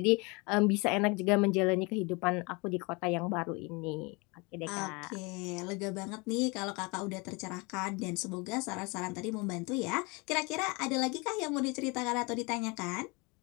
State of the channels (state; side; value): quieter; right; 28.0 dB